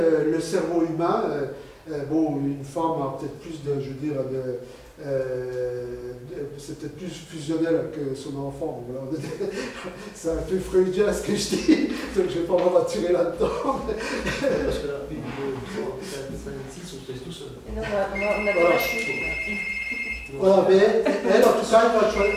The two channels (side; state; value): both; identical; correlation 1.00